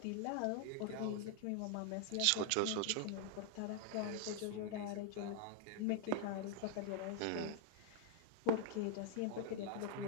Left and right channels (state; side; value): different; both; correlation 0.00